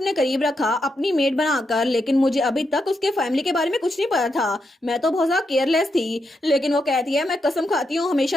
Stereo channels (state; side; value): normal; both; correlation 0.83